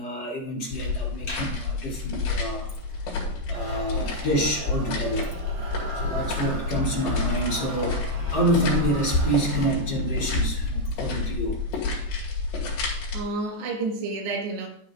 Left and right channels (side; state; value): both; normal; correlation -0.02